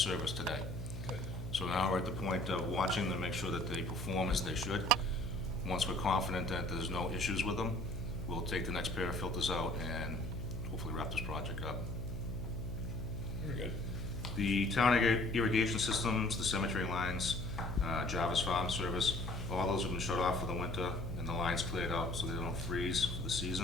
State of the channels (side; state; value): left; noise; hum, 10 dB below the sound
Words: today. Good. So now we're at the point of watching them, make sure that they perform as they should. Once we're confident that there's no issues with them, we'll take the next pair of filters out and hopefully wrap this project up. Very good. The town irrigation systems, the cemetery lines, Jarvis Farm Service, all those have been shut off for the winter and the lines cleared out so they don't freeze for the